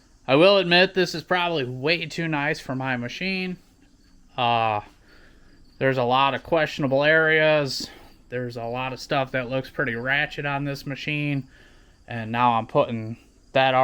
I will admit this is probably way too nice for my machine. There's a lot of questionable areas. There's a lot of stuff that looks pretty ratchet on this machine. And now I'm putting that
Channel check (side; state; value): both; identical; correlation 1.00